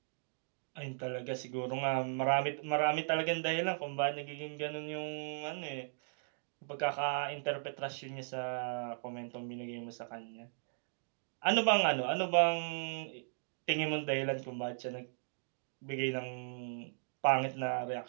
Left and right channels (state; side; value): silent; left; digital silence